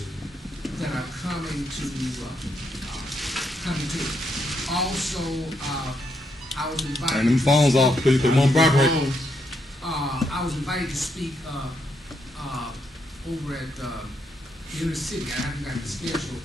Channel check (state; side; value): normal; both; correlation 0.78